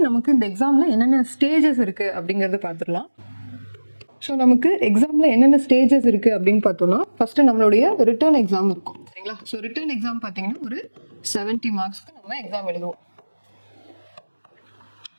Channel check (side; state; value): both; inverted; correlation -1.00